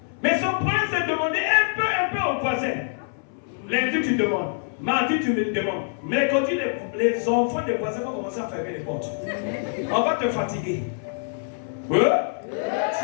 Mais son problème, c'est de demander un peu aux voisins. Lundi, tu demandes. Mardi, tu me demandes. Mercredi, les enfants des voisins vont commencer à fermer les portes. On va te fatiguer.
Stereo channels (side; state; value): right; silent; 61 dB below the other